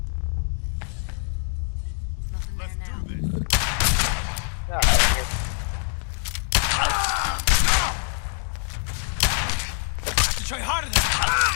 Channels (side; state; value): right; silent; 62 dB below the other